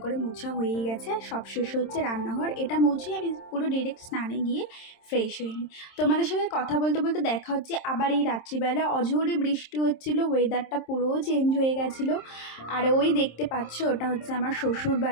করে মোছা হয়েই গেছে। সব শেষ হচ্ছে রান্নাঘর, এটা মুছে আমি পুরো ডিরেক্ট স্নানে গিয়ে ফ্রেশ হয়ে নিই। তোমাদের সাথে কথা বলতে বলতে দেখা হচ্ছে আবার এই রাত্রিবেলা। অঝোরে বৃষ্টি হচ্ছিল, ওয়েদারটা পুরো চেঞ্জ হয়ে গেছিলো। আর ওই দেখতে পাচ্ছ, ওটা হচ্ছে আমার শ্বশুর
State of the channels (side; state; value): right; late; 26 ms